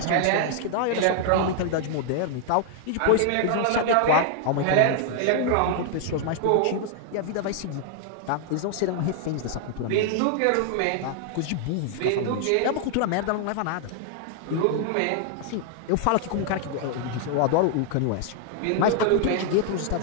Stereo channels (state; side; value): different; both; correlation 0.00